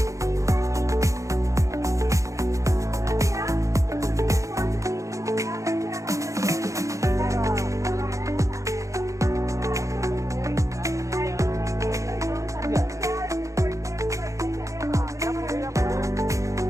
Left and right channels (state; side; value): late; left; 0.15 ms